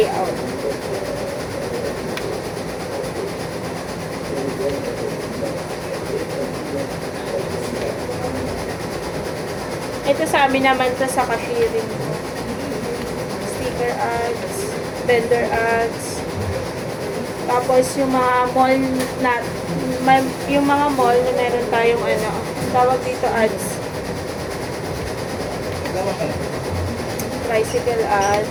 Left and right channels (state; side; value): identical; both; correlation 1.00